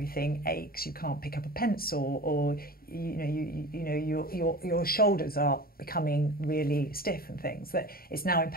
aches, you can't pick up a pencil, or your shoulders are becoming really stiff and things, that it's now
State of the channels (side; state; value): right; late; 0.43 ms